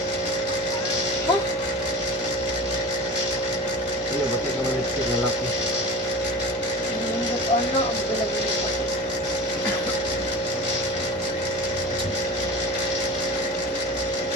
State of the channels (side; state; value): both; normal; correlation 0.34